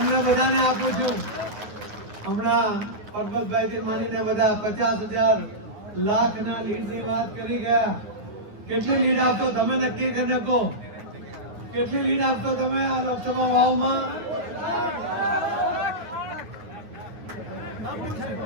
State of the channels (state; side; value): late; left; 9.4 ms